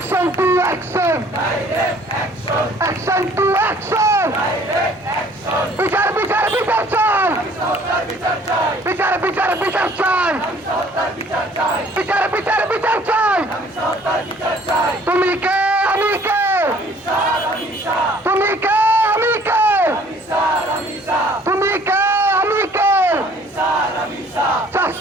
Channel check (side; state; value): both; normal; correlation 0.56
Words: to action! Action to action! বিচার বিচার বিচার চাই! বিচার বিচার বিচার চাই! বিচার বিচার বিচার চাই! তুমি কে আমি কে? তুমি কে আমি কে? তুমি কে আমি কে?